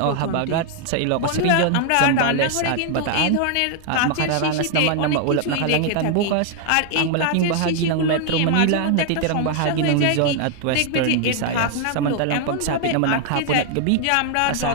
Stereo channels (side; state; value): both; different; correlation 0.00